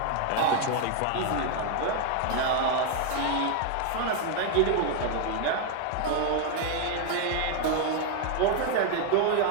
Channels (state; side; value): different; both; correlation 0.00